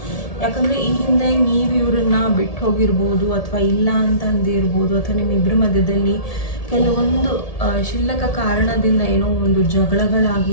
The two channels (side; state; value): right; late; 1.7 ms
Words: ಯಾಕಂದರೆ ಈ ಹಿಂದೆ ನೀವು ಇವ್ರನ್ನ ಬಿಟ್ಟು ಹೋಗಿರ್ಬೋದು, ಅಥವಾ ಇಲ್ಲ ಅಂತ ಅಂದಿರ್ಬೋದು, ಅಥವಾ ನಿಮ್ಮಿಬ್ಬರ ಮಧ್ಯದಲ್ಲಿ ಕೆಲವೊಂದು ಕ್ಷುಲ್ಲಕ ಕಾರಣದಿಂದ ಏನೋ ಒಂದು